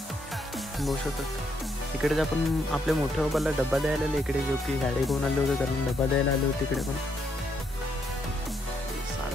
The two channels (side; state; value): both; normal; correlation 0.75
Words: बघू शकतात इकडेच आपण आपल्या मोठ्या बाबाला डब्बा द्यायला आले इकडे, जो की गाडी घेऊन आले होते कारण डब्बा द्यायला आले होते इकडे. पण